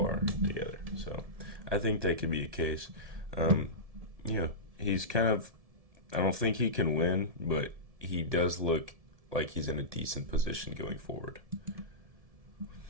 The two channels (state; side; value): late; left; 1.7 ms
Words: together. So I think that could be a case. He's kind of, I don't think he can win, but he does look like he's in a decent position going forward.